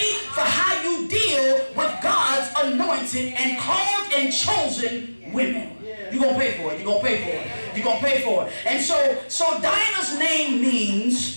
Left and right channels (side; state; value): both; inverted; correlation -1.00